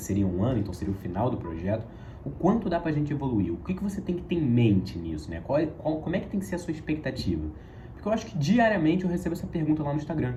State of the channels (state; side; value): identical; both; correlation 1.00